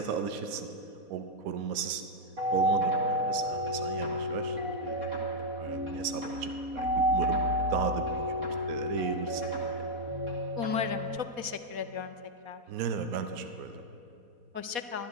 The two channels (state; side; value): late; left; 4.2 ms